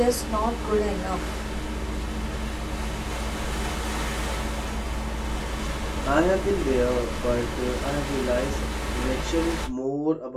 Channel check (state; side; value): identical; both; correlation 1.00